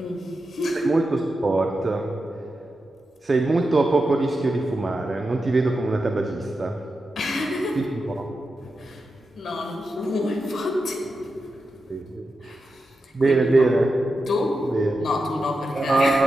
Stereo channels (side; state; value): both; normal; correlation 0.89